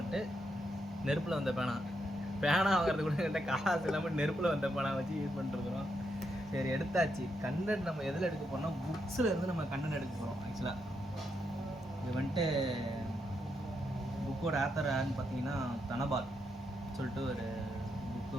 நெருப்பில் வந்த பேனா வாங்குறது கூட என்கிட்ட காசு இல்லாமல் நெருப்பில் வந்த பேனா வச்சு யூஸ் பண்ணிட்டுருக்குறோம். சரி எடுத்தாச்சு. கண்டென்ட் நம்ம எதில் எடுக்க போகிறோம்னா புக்ஸில் இருந்து நம்ம கண்டென்ட் எடுக்க போகிறோம். ஆக்சுவலாக இது வந்துட்டு புக்கோட ஆத்தர் யாருன்னு பார்த்தீங்கன்னா தனபால் சொல்லிட்டு ஒரு புக்கு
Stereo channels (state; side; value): normal; both; correlation 0.81